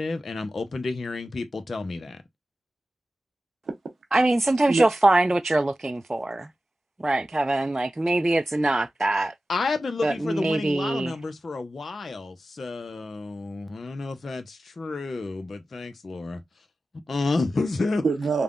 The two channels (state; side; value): normal; both; correlation 0.94